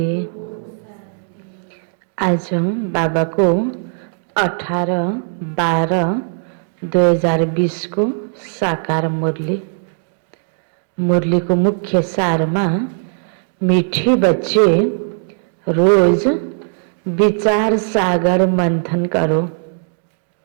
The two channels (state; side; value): silent; left; digital silence